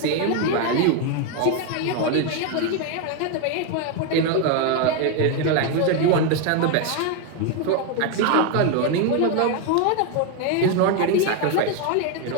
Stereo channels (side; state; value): both; different; correlation 0.01